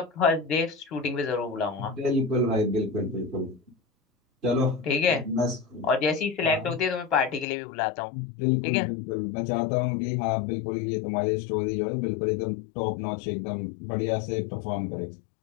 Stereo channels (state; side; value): drops out; right; at 7.5 s